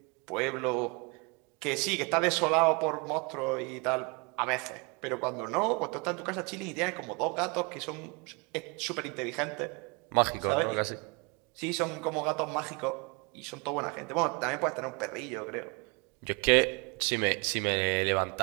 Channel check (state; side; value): quieter; left; 30.3 dB